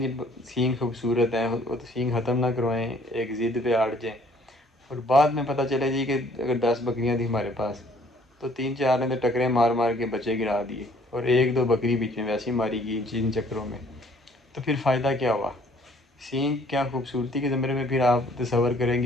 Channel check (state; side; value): normal; both; correlation 0.59